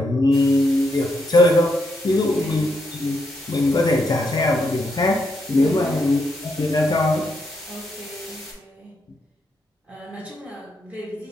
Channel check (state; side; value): normal; both; correlation 0.79